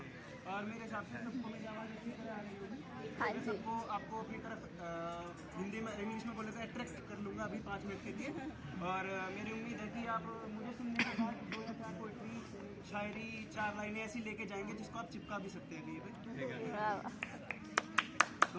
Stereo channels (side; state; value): both; identical; correlation 1.00